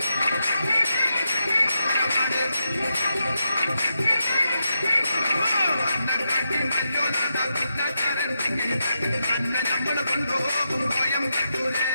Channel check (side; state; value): both; inverted; correlation -0.85